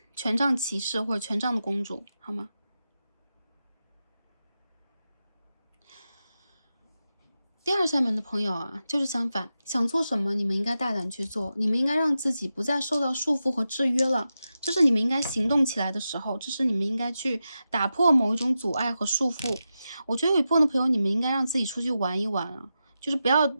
权杖骑士或者权杖的公主，好吗？第2扇门的朋友就是相反，想做什么你们应该大胆去做，你们应该让自己不再受到束缚和制约了，这是你们应该行动起来的时候，这是你们应该去打破某一种阻碍和束缚。我觉得有一部分的朋友，你们应该让自己出去玩一玩就是不要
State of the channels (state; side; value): inverted; both; correlation -0.90